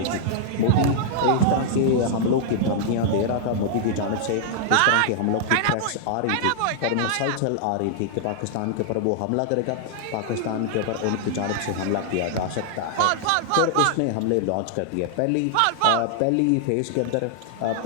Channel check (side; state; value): both; different; correlation -0.01